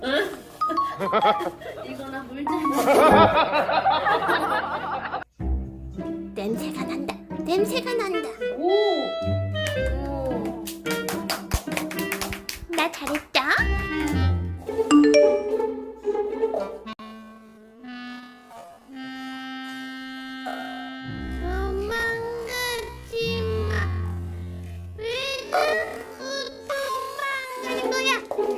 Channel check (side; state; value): both; identical; correlation 1.00